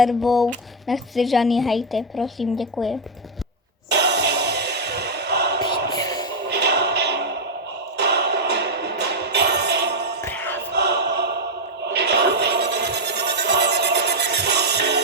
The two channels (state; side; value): normal; both; correlation 0.01